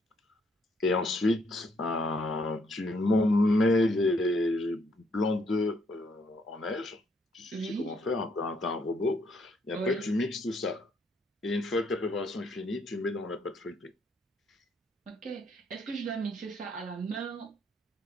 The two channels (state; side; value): normal; both; correlation 0.70